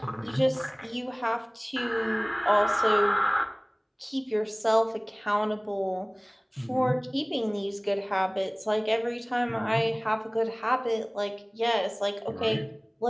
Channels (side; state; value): both; identical; correlation 1.00